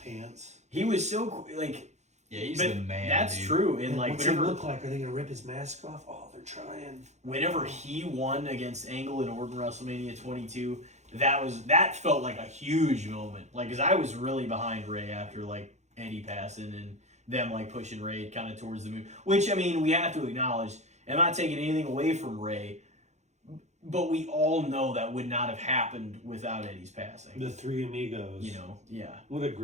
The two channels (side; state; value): left; late; 0.33 ms